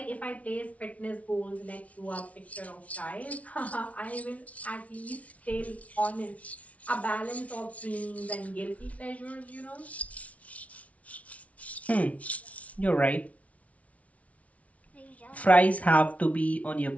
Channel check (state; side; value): late; right; 0.066 ms